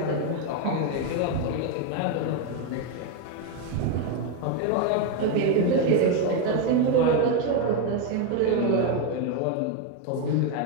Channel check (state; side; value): different; both; correlation 0.02